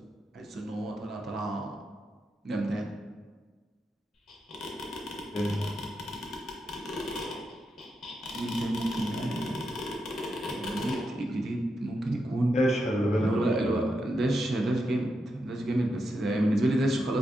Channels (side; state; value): both; normal; correlation 0.85